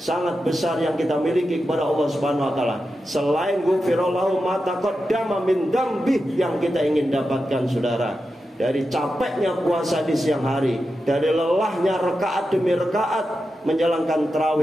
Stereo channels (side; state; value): both; normal; correlation 0.90